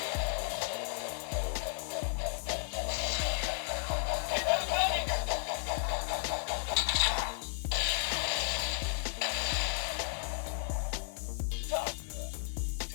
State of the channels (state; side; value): silent; right; 55 dB below the other